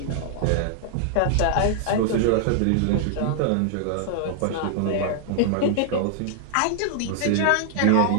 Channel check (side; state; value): both; different; correlation -0.01